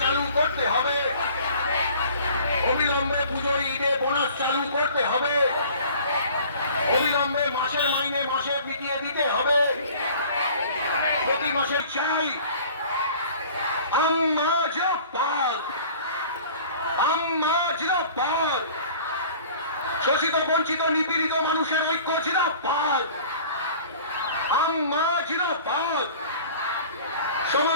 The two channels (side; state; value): both; inverted; correlation -0.47